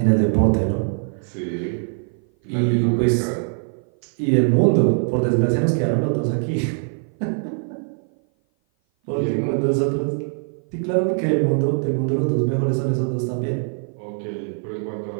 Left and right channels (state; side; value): silent; left; 57 dB below the other